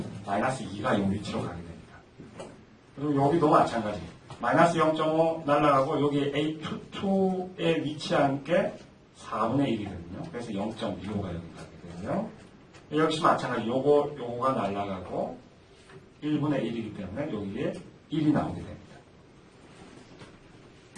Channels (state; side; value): identical; both; correlation 1.00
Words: 마이너스 2가 이 위치로 가게 됩니다. 그리고 여기도 마찬가지. 마이너스 0.5 날아가고 여기 A22에 위치한 게 4분의 1이거든요. 그래서 0.25가 여기 가게 되고요. 역시 마찬가지. 요거가 날아가고 1분의 1이기 때문에 여기에 1이 나오게 됩니다.